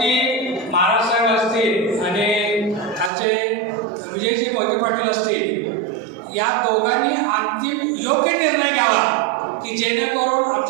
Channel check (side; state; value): left; drops out; at 3.1 s